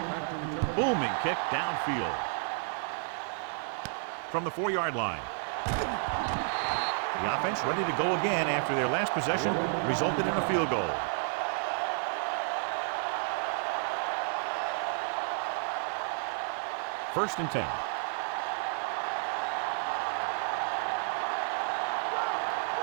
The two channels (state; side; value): silent; left; 57 dB below the other